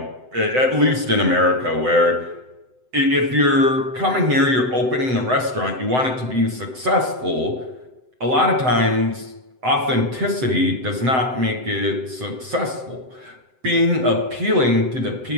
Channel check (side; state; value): left; late; 7.8 ms